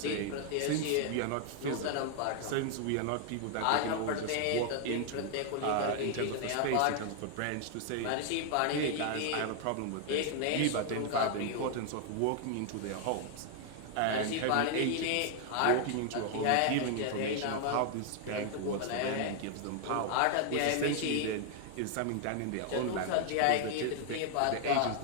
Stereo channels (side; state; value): both; different; correlation 0.00